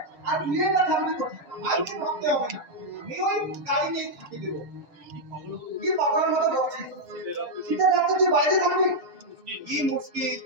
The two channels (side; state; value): left; late; 6.9 ms